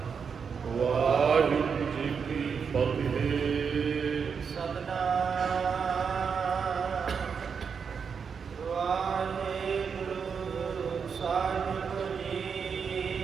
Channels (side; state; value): left; quieter; 6.3 dB